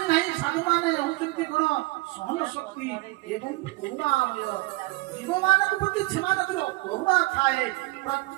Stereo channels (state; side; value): quieter; left; 22.1 dB